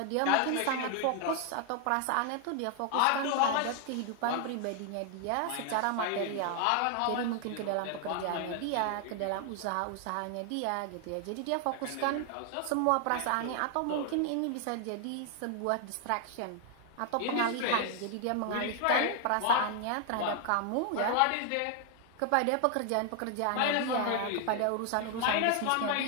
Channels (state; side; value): different; both; correlation 0.00